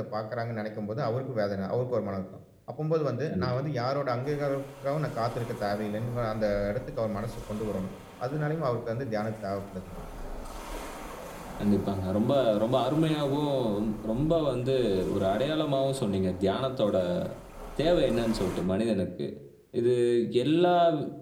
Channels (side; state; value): both; identical; correlation 1.00